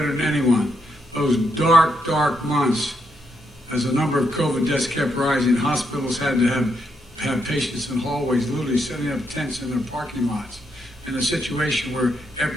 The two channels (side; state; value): both; normal; correlation 0.78